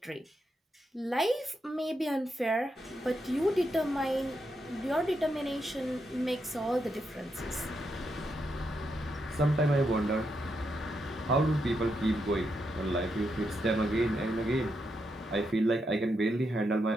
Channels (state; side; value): normal; both; correlation 0.82